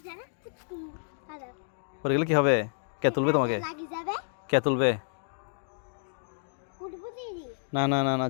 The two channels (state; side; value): silent; right; digital silence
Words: পড়ে গেলে কি হবে? কে তুলবে তোমাকে? কে তুলবে? না না না না,